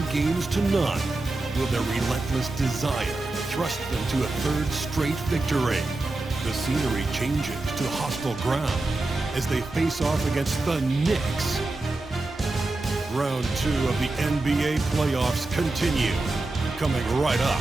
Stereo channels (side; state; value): left; quieter; 3.0 dB